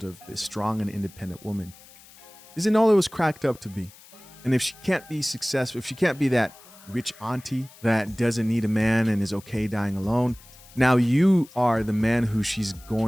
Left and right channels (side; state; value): left; noise; hiss, 23 dB below the sound